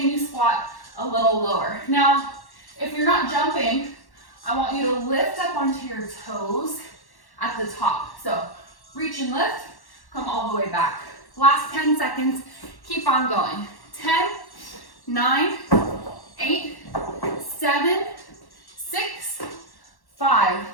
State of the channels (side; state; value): right; late; 1.1 ms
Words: you squat a little lower? Now, if you're not jumping, I want you to lift up onto your toes at the top. So reach and lift, come all the way back. Last 10 seconds, keep on going. 10, 9, 8, 7, 6, 5,